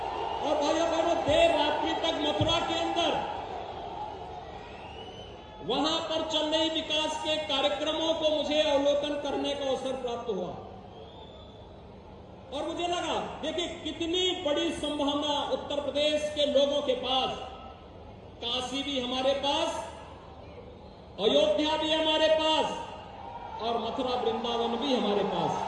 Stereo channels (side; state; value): both; identical; correlation 1.00